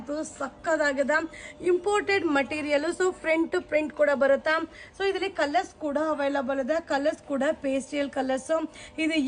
ಸಕ್ಕದಾಗಿದೆ. Imported material. So front print ಕೂಡ ಬರುತ್ತಾ. ಸೊ ಇದರಲ್ಲಿ ಕಲರ್ಸ್ ಕೂಡ ಅವೈಲಬಲ್ ಇದೆ. ಕಲರ್ಸ್ ಕೂಡ ಪೇಸ್ಟಲ್ ಕಲರ್ಸ್. ಇದು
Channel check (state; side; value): identical; both; correlation 1.00